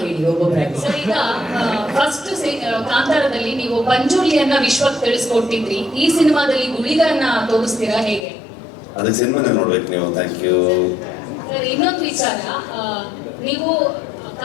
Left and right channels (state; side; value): drops out; right; at 8.2 s